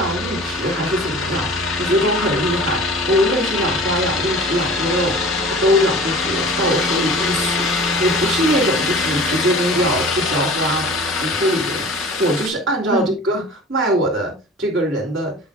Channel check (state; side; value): normal; both; correlation 0.42